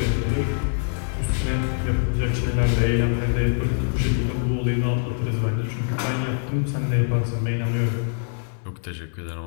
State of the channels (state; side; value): silent; right; 58 dB below the other